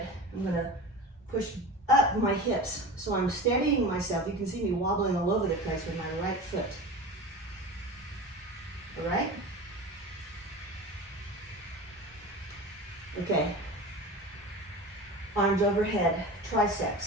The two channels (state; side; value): normal; both; correlation 0.32